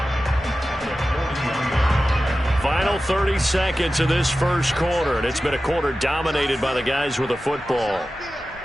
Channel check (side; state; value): both; normal; correlation 0.94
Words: Final 30 seconds of this first quarter, and it's been a quarter dominated by the guys with the football.